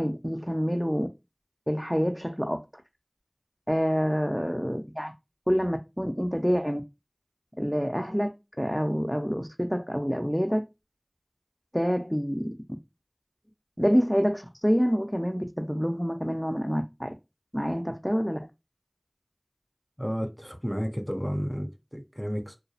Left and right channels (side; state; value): both; identical; correlation 1.00